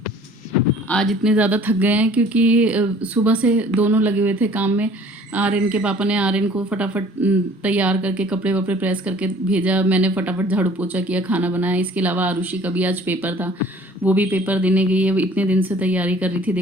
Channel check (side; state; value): both; normal; correlation 0.52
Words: आज इतने ज़्यादा थक गए हैं क्योंकि सुबह से दोनों लगे हुए थे काम में। आर्यन के पापा ने आर्यन को फटाफट तैयार करके कपड़े वपड़े प्रेस करके भेजा, मैंने फटाफट झाड़ू पोछा किया, खाना बनाया। इसके अलावा आरुषि का भी आज पेपर था, वो भी पेपर देने गई है। इतने दिन से तैयारी कर रही थी,